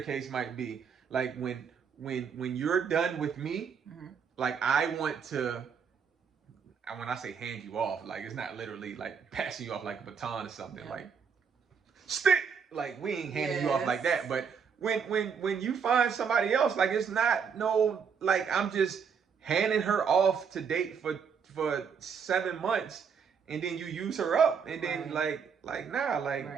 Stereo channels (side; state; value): left; quieter; 6.5 dB